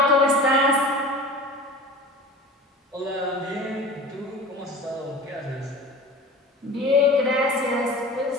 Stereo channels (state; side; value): normal; both; correlation 0.38